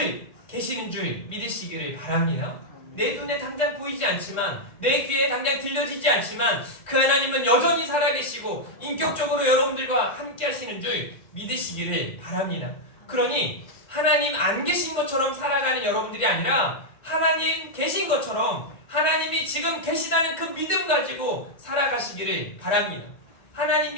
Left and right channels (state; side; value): late; right; 1.7 ms